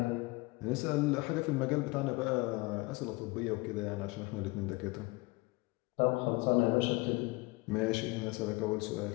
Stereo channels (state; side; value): quieter; right; 24.1 dB